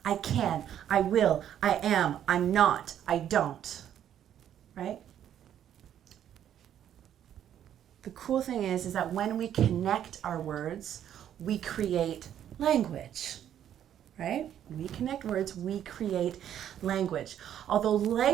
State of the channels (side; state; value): left; quieter; 10.3 dB